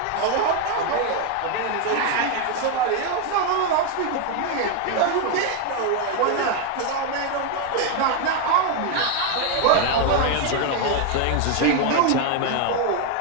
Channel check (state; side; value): different; both; correlation 0.01